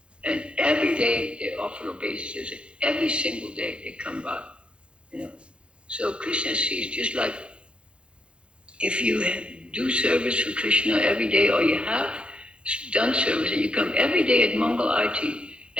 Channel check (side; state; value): left; late; 0.057 ms